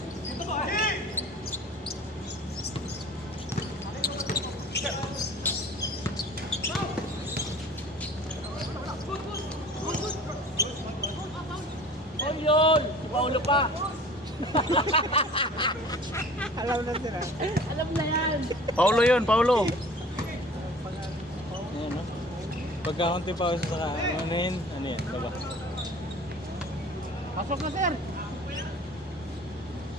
Yun! Paulo pa! Alam na sila. Alam na yan! Paulo yun, Paulo. Ayan no? Pagkakunti pause saka anuhin, ano yan, baba. Pasok na sir.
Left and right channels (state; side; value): normal; both; correlation 0.45